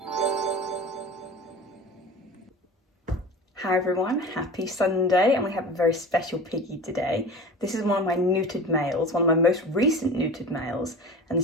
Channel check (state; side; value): normal; both; correlation 0.35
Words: Hi everyone, happy Sunday, and we have a very special piggy today. This is one of my neutered males, one of my most recent neutered males, and